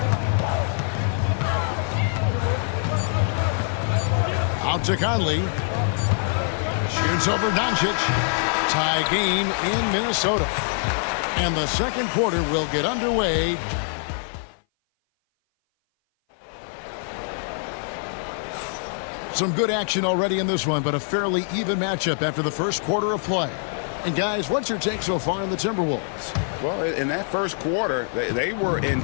Out to Conley. Shoots over Doncic. Tie game in Minnesota. And the second quarter will get underway. Some good action already in this one, but a fairly even matchup after the first quarter of play. And guys, what's your take so far on the Timberwolves? Well, in that first quarter, they were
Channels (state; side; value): silent; right; 58 dB below the other